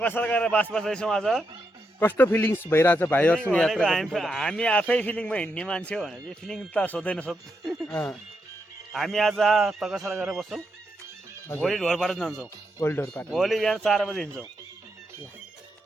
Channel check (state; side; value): normal; both; correlation 0.82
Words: गरेर बास बस्दैछौँ आज। कस्तो फिलिङ्स भइरहेछ भाइहरूसँग यात्रा? हामी आफै फिलिङमा हिँड्ने मान्छे हो भने चाहिँ फिलिङ त सोध्दैन सोध। हामी आज तकसर गरेर बस्छौँ, भोलि ढोरपाटा जान्छौँ। भोलि बिहान 4 बजी हिँड्छौँ।